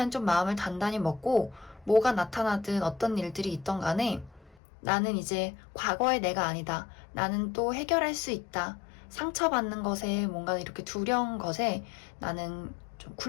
좀 마음을 단단히 먹고 뭐가 나타나든 어떤 일들이 있던 간에 나는 이제 과거의 내가 아니다. 나는 또 해결할 수 있다. 상처받는 것에 뭔가 이렇게 두려운 것에 나는 좀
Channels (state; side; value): drops out; right; at 4.5 s